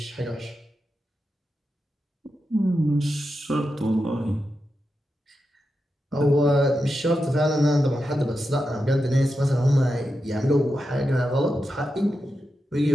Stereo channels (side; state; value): both; normal; correlation 0.89